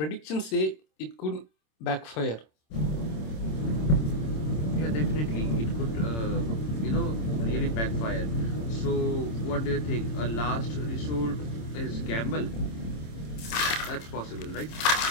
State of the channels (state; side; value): late; right; 26 ms